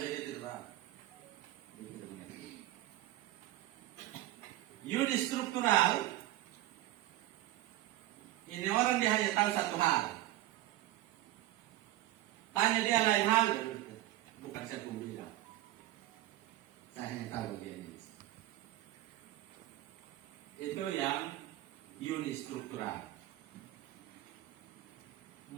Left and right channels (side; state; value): left; quieter; 15.5 dB